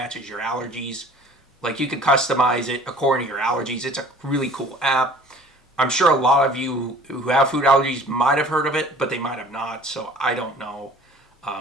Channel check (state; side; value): normal; both; correlation 0.48